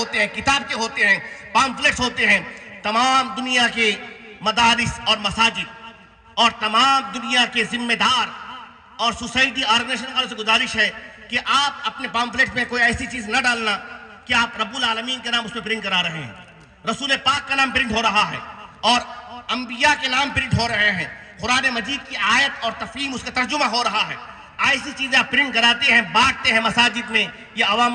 ہیں، کتاب کے ہوتے ہیں، پامفلیٹس ہوتے ہیں. تمام دنیا کے مدارس اور مساجد اور تمام دنیا کے ذمہ دار اور سوسائٹی آرگنائزیشن والوں سے گزارش ہے کہ آپ اپنے پامفلیٹ میں کوئی ایسی چیز نہ ڈالنا کہ آپ رب العالمین کے نام اس میں پرنٹ کرا رہے ہیں، رسول پاک کا نام پرنٹ ہو رہا ہے، اور انبیاء کے نام پرنٹ ہو رہے ہیں، قرآن مجید کی آیت اور تفہیم اس کا ترجمہ ہو رہا ہے. ایسی چیزیں آپ پرنٹ کراتے ہیں، بانٹتے ہیں مساجد میں یا عوام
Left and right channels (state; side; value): identical; both; correlation 1.00